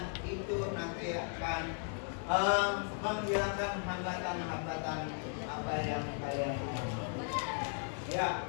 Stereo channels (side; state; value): right; silent; 53 dB below the other